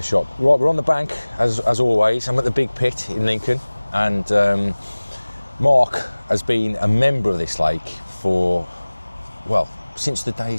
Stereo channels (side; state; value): both; inverted; correlation -1.00